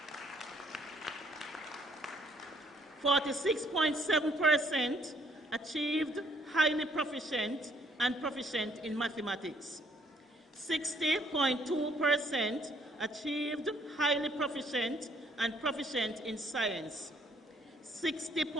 .7% achieved highly proficient and proficient in mathematics. 60.2% achieved highly proficient and proficient in science.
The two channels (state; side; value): normal; both; correlation 0.65